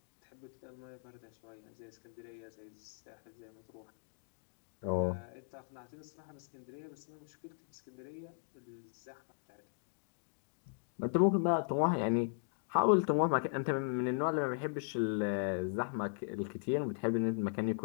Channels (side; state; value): right; silent; digital silence